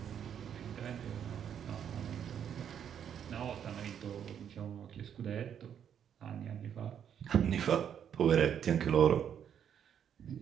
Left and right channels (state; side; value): quieter; left; 8.7 dB